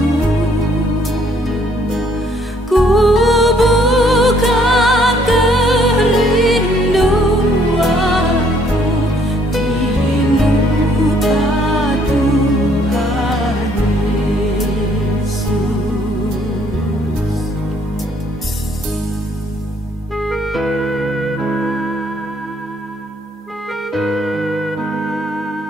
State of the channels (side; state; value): both; normal; correlation 0.65